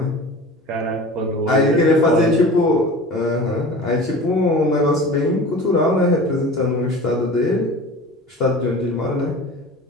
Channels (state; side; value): normal; both; correlation 0.37